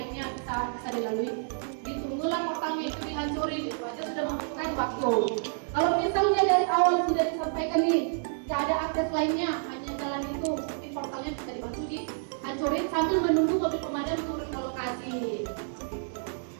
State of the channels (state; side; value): silent; left; digital silence